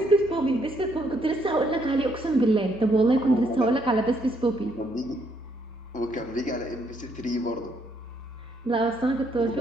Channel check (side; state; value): both; normal; correlation 0.72